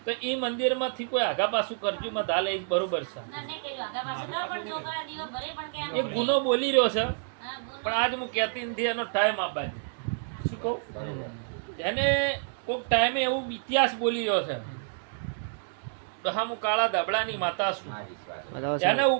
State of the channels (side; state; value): left; silent; digital silence